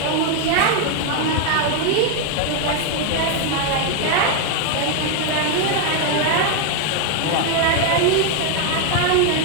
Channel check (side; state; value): both; different; correlation 0.01